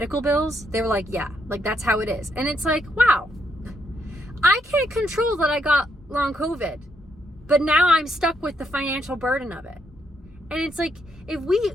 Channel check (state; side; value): normal; both; correlation 0.77